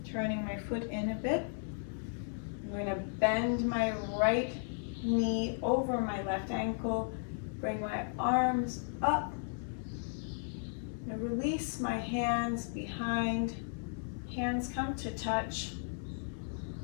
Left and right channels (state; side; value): silent; right; 54 dB below the other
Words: turning my foot in a bit. I'm going to bend my right knee over my left ankle, bring my arms up, and release my hands behind. Hands come to touch.